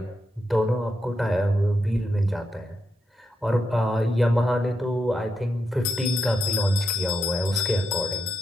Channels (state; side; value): normal; both; correlation 0.84